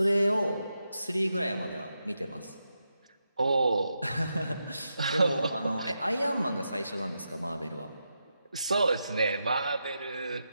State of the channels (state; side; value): inverted; both; correlation -0.86